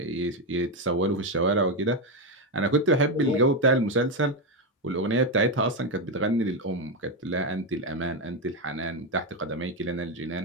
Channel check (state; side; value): normal; both; correlation 0.08